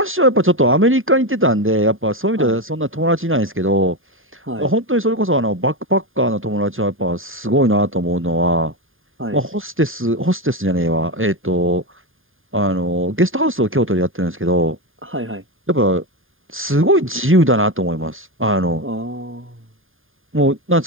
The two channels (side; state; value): left; late; 0.59 ms